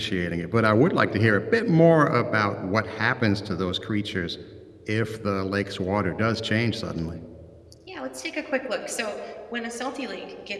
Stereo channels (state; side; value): identical; both; correlation 1.00